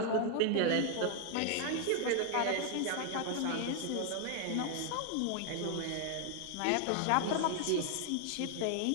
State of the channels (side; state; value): both; different; correlation 0.00